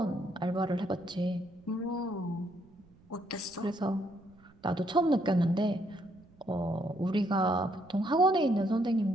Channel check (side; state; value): right; noise; rumble, 28 dB below the sound